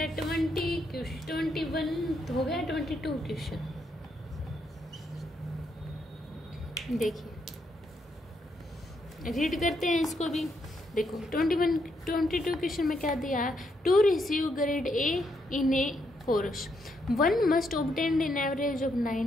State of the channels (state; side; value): normal; both; correlation 0.77